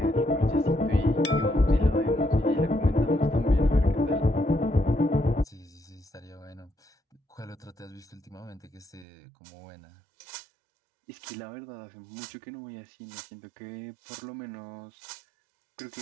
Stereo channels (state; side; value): drops out; left; at 9.1 s